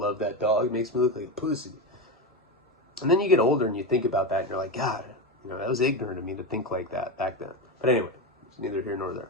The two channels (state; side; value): normal; both; correlation 0.16